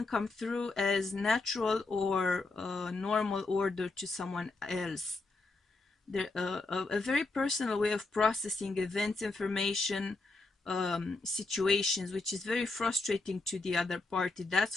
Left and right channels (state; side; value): quieter; right; 3.4 dB